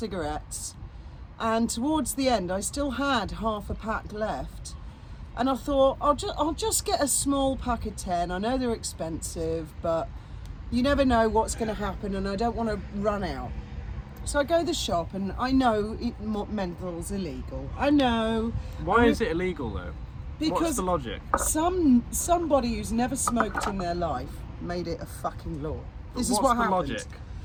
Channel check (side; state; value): both; identical; correlation 1.00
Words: and towards the end, I still had half a pack left. And I thought, I'll just get a small pack of 10. I know they're expensive, but you never know what's going to happen, and I don't want to run out. So I go to the shop, and I know menthol's illegal. I know. Why is it illegal though? Because What's the logic? somebody who's never smoked in their life made it a fucking law. This is what What's the happened. logic?